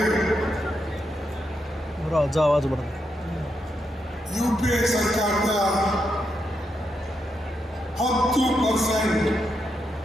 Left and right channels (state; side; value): normal; both; correlation 0.83